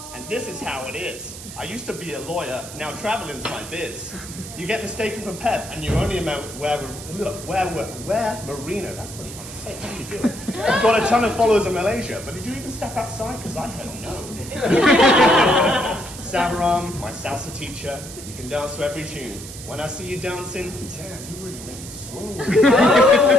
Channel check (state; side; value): noise; right; hiss, 13 dB below the sound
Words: And this is how it is. I used to be a lawyer, now traveling's my biz. You get mistaken for Pep, and you only wear merino. That's pretty hard to say. How do you do it? You've got a ton of followers in Malaysia, but did you even step outside? Because I heard no. Sabaram, my salsa teacher, you can dance to every tune. When I see you dancing, damn, you really make me swoon.